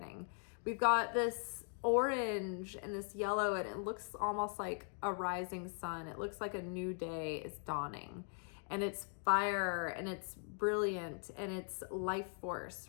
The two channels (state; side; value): silent; right; 51 dB below the other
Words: We've got this orange and this yellow, and it looks almost like a rising sun. It looks like a new day is dawning. and it's fire and it's brilliant and it's life force,